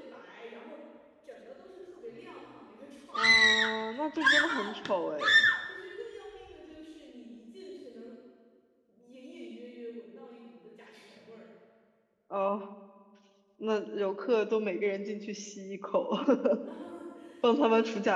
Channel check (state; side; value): identical; both; correlation 1.00